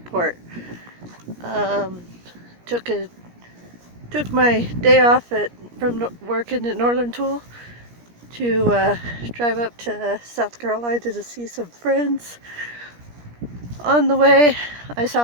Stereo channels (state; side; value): late; left; 17 ms